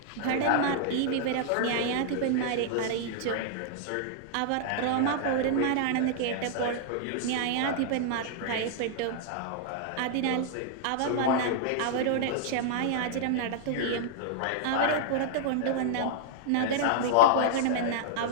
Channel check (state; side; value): different; both; correlation -0.01